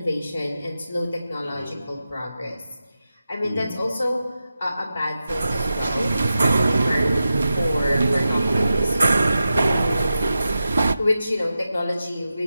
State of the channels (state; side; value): inverted; both; correlation -0.91